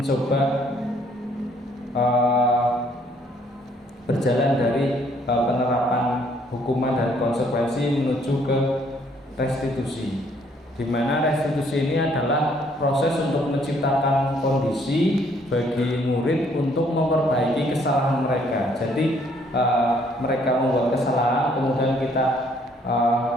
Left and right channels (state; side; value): normal; both; correlation 0.65